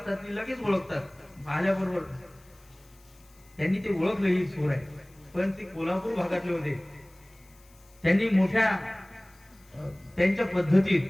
ते लगेच ओळखतात आल्याबरोबर. त्यांनी ते ओळखलं ही चोर आहे, पण ते कोल्हापूर भागातले होते. त्यांनी मोठ्या त्यांच्या पद्धतीत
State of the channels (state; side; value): noise; left; hiss, 29 dB below the sound